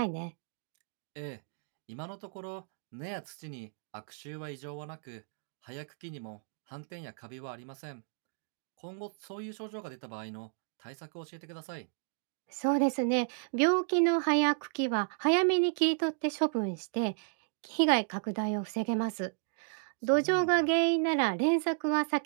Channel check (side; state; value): left; silent; digital silence